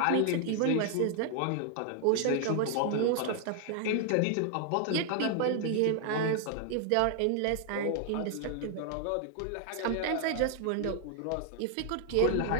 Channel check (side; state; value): both; different; correlation 0.00